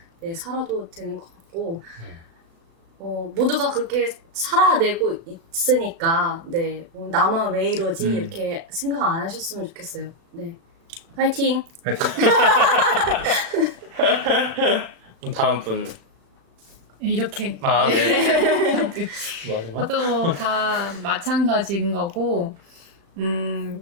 네, 살아도 되는 것 같고 모두가 그렇게 살아내고 있으니까 네, 나만 왜 이러지 이렇게 생각 안 하셨으면 좋겠어요. 네, 화이팅! 파이팅. 다음 분. 이렇게. 네. 마지막? 저도 다 마찬가지인 거고,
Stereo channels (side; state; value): left; late; 36 ms